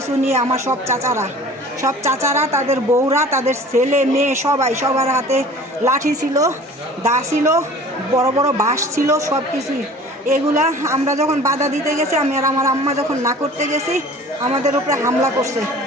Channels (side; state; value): both; normal; correlation 0.44